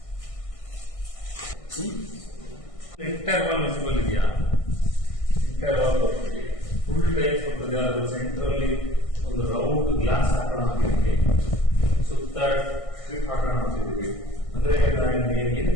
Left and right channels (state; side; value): late; right; 1.6 ms